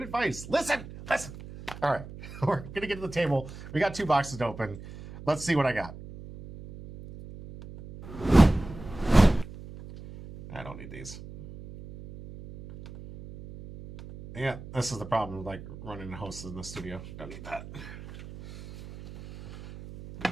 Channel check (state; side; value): noise; right; hum, 14 dB below the sound